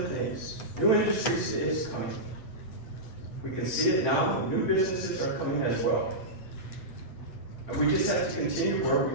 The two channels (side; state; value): right; late; 8.6 ms